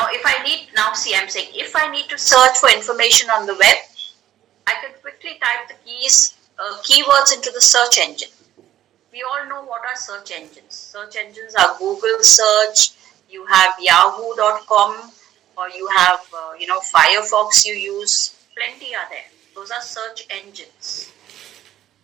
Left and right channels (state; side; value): quieter; left; 12.2 dB